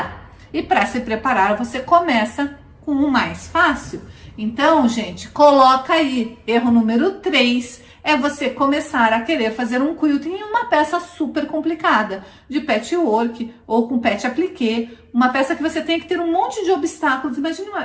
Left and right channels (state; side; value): identical; both; correlation 1.00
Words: E para se preparar, você começa com o mais fácil. Então, gente, coloca aí, erro número 3, é você começar a querer fazer um quilting em uma peça super complicada, de patchwork ou com patch appliqué, uma peça que você tem que ter um monte de obstáculos. Imagine